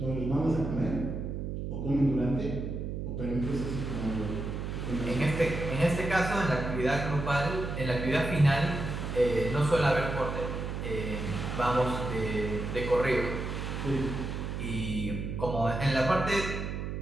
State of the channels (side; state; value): right; noise; hum, 4 dB below the sound